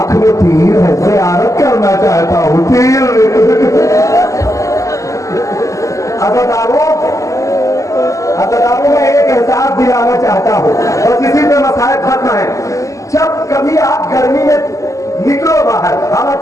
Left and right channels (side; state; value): right; late; 0.16 ms